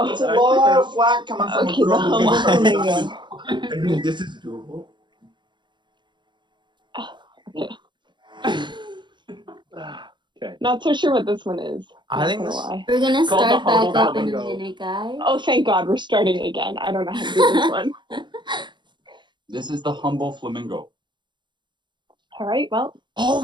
It's a lot of flack coming from okay, a girl. the humble flamingo. I mean, this is doable. Okay. Not so sure what this one is. I Not think gonna this- lie. We're gonna Called the start back humble up in a flamingo. minute, guys. Oh, thank God, we're starting again. I don't know how to do this one. This is the humble flamingo. All right, well, Oh,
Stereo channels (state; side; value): late; left; 0.22 ms